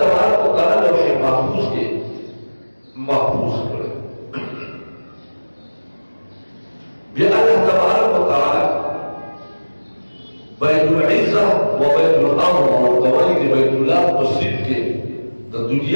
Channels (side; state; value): both; inverted; correlation -1.00